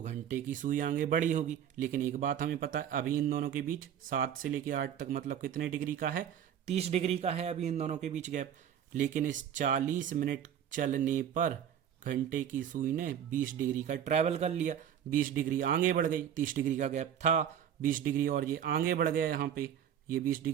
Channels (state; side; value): quieter; left; 9.4 dB